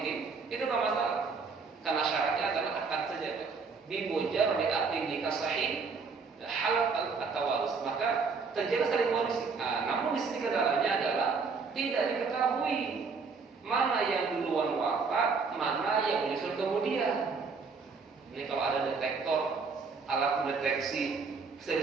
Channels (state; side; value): quieter; left; 4.9 dB